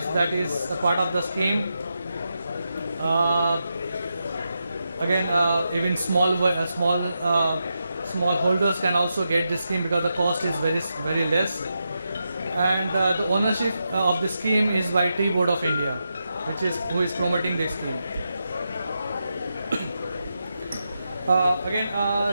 that is a part of the scheme. Again, even small holders can also get this scheme because the cost is very less. And the ownership of the scheme is by Tea Board of India, who is promoting this scheme. Again,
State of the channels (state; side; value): inverted; both; correlation -0.86